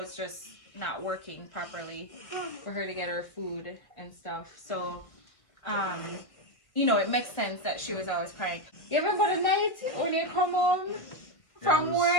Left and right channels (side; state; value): right; late; 1.7 ms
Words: just not working properly for her to get her food and stuff. So you know, it makes sense that she was always crying. You ever go to night when you come home from